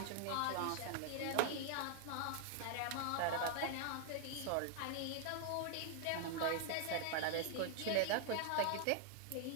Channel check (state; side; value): different; both; correlation 0.00